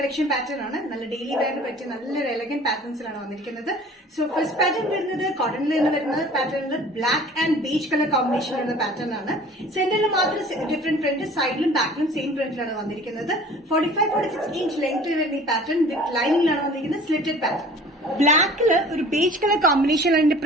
പാറ്റേൺ ആണ്. നല്ല ഡെയിലി വെയറിന് പറ്റിയ നല്ലൊരു എലഗന്റ് പാറ്റേൺസിലാണ് വന്നിരിക്കുന്നത്. സോ ഫസ്റ്റ് പാറ്റേൺ വരുന്നത് കോട്ടണിൽ നിന്ന് വരുന്ന പാറ്റേണിൽ black and beige colour combination വരുന്ന പാറ്റേൺ ആണ്. സെന്ററിൽ മാത്രം ഡിഫറെന്റ് പ്രിന്റ്, സൈഡിലും ബാക്കിലും സെയിം പ്രിന്റിലാണ് വന്നിരിക്കുന്നത്. 45-46 ഇഞ്ച് ലെങ്ത്തിൽ വരുന്ന ഈ പാറ്റേൺ വിത്ത് ലൈനിങ്ങിലാണ് വന്നിരിക്കുന്നത്. Slitted pattern. ബ്ലാക്കില് ഒരു ബേജ് കളർ കോമ്പിനേഷനിലാണ് ഇതിന്റെ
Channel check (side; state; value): both; normal; correlation 0.47